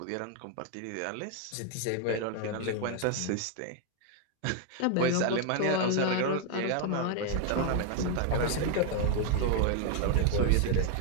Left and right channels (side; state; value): both; different; correlation 0.00